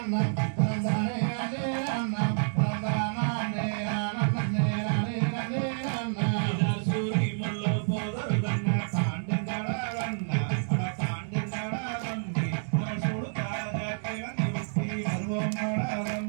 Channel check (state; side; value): silent; left; digital silence